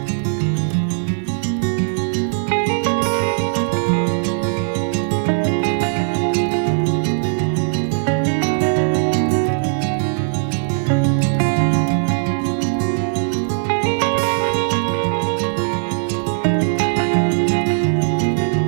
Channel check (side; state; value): left; silent; 57 dB below the other